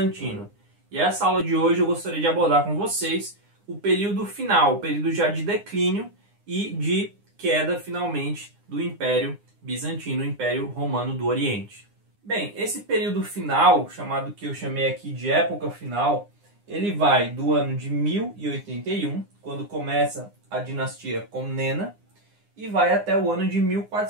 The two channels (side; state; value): left; late; 9.8 ms